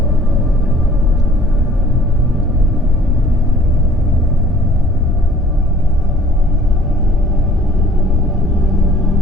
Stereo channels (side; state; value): both; normal; correlation 0.54